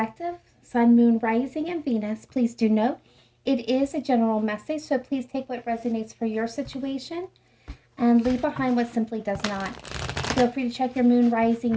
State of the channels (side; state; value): both; identical; correlation 1.00